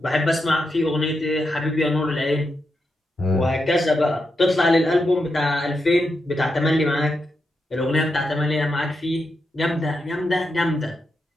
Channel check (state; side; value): normal; both; correlation 0.85